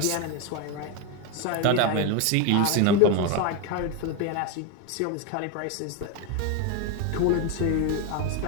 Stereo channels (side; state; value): both; different; correlation 0.02